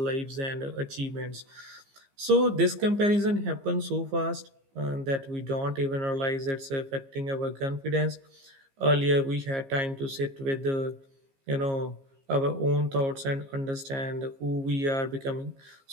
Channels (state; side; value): late; left; 15 ms